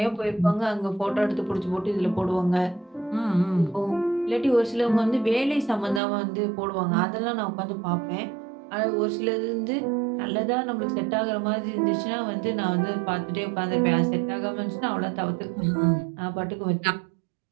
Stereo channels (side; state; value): left; drops out; at 6.0 s